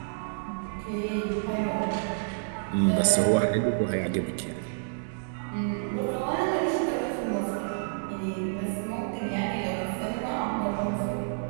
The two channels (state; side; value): silent; left; digital silence